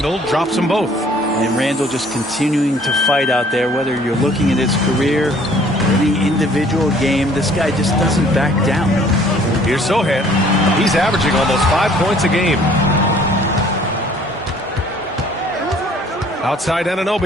drops them both. And Randle just continuing to fight out there, whether you're looking at his career, any individual game, this guy just doesn't back down. Here's Sohan. He's averaging almost 5 points a game. Outside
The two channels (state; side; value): normal; both; correlation 0.56